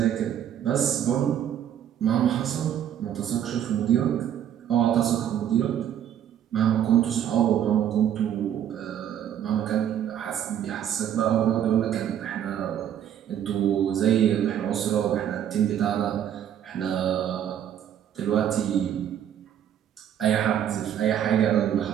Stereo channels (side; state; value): left; quieter; 10.0 dB